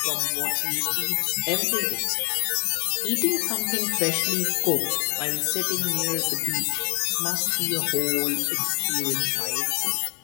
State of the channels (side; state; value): right; quieter; 33.8 dB